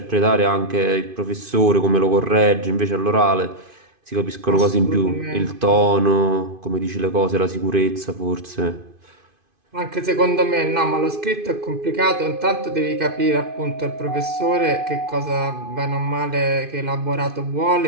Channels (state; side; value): late; left; 2.5 ms